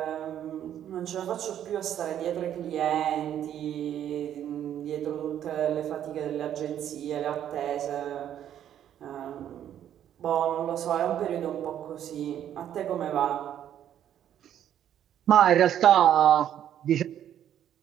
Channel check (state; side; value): quieter; left; 10.5 dB